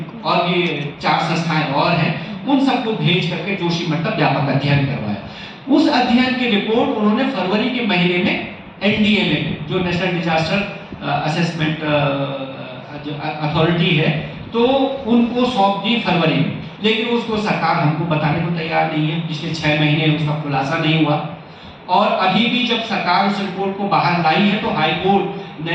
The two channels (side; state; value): both; identical; correlation 1.00